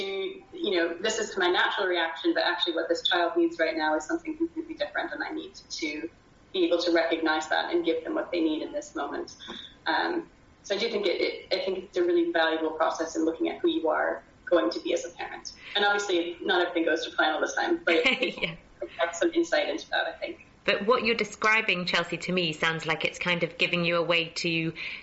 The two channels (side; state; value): both; identical; correlation 1.00